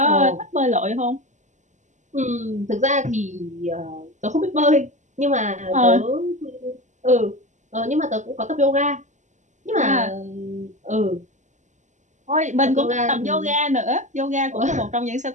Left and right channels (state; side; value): late; left; 0.35 ms